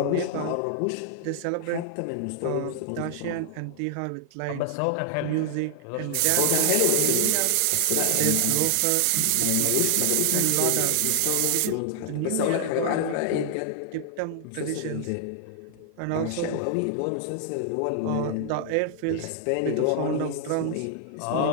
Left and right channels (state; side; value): different; both; correlation 0.00